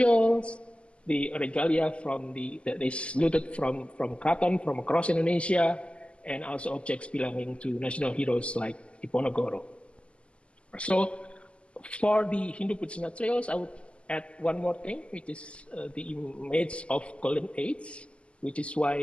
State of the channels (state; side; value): late; right; 0.055 ms